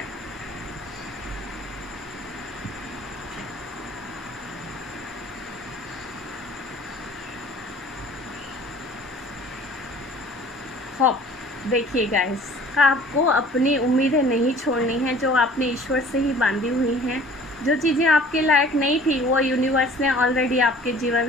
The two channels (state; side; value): normal; both; correlation 0.49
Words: देखिए गाइस, आपको अपनी उम्मीदें नहीं छोड़नी है जो आपने ईश्वर से ही बांधी हुई हैं। जो चीज़ें आपके लायक नहीं थी वो यूनिवर्स ने ऑलरेडी आपके